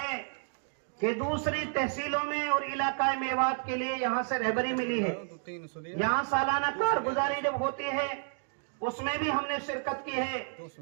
کہ دوسری تحصیلوں میں اور علاقہ میوات کے لیے یہاں سے رہبری ملی ہے. یہاں سالانہ کارگزاری جب ہوتی ہے اس میں بھی ہم نے شرکت کی ہے.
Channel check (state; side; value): silent; left; digital silence